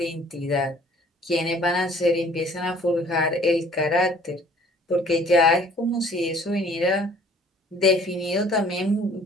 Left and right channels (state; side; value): normal; both; correlation 0.55